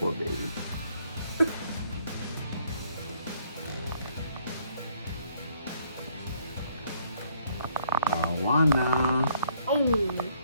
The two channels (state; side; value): inverted; both; correlation -0.67